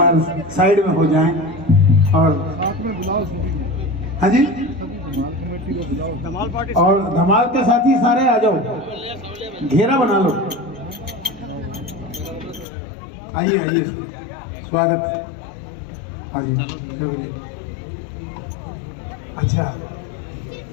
साइड में हो जाए। और हाँ जी, और धमाल के साथी सारे आ जाओ, घेरा बना लो। आइए आइए, स्वागत। अच्छा,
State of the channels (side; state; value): right; drops out; at 12.7 s